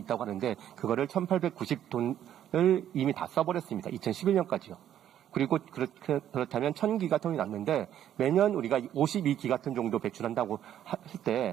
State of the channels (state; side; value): quieter; left; 10.8 dB